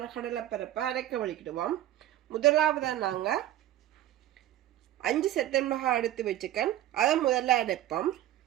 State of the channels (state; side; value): quieter; left; 13.3 dB